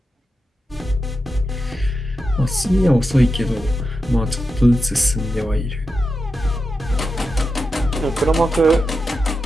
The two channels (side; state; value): both; normal; correlation 0.89